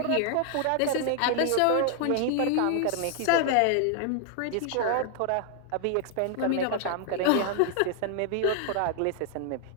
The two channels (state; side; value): different; both; correlation 0.00